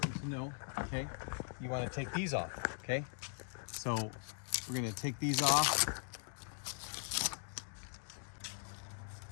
to know. Okay, you want to take these off. Okay, so we're going to take these off.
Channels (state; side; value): silent; right; digital silence